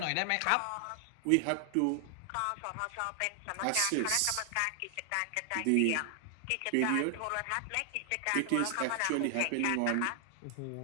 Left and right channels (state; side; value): different; both; correlation 0.00